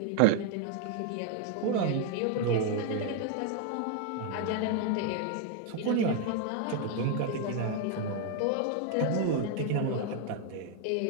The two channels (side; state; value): both; different; correlation 0.00